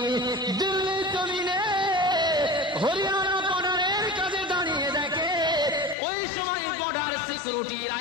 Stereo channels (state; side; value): drops out; right; at 6.0 s